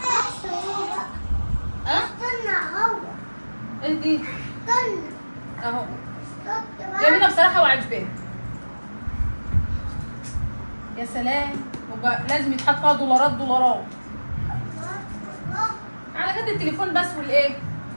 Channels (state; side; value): inverted; both; correlation -1.00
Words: ها؟ ايه دي؟ اهو جميله بصراحه وعجباني. يا سلام، لازم يتحط فيها دولارات على قد التليفون بس والايه،